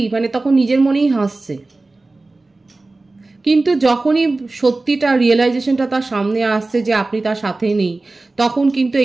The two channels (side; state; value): left; quieter; 3.2 dB